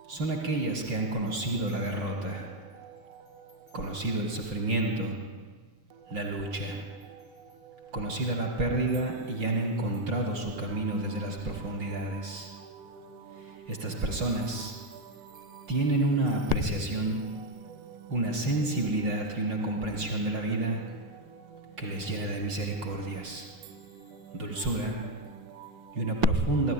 son aquellas que han conocido la derrota, conocido el sufrimiento, la lucha, conocida la pérdida y han encontrado su camino desde las profundidades. Estas personas tienen una apreciación, una sensibilidad y una comprensión de la vida que les llena de misericordias, dulzura y una profunda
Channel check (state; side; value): late; left; 5.6 ms